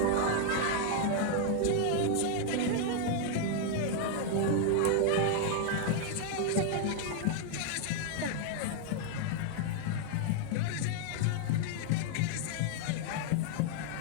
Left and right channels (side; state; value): both; different; correlation 0.00